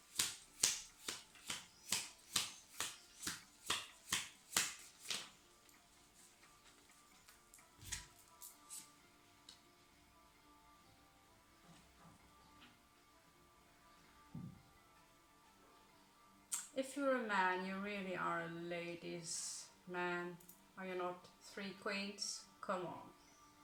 If you're a man, you really are a ladies' man, are you not? 3 queens? Come on.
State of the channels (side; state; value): both; identical; correlation 1.00